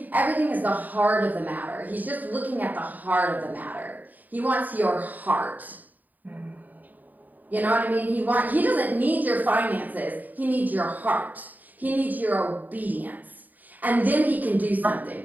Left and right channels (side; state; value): left; late; 0.084 ms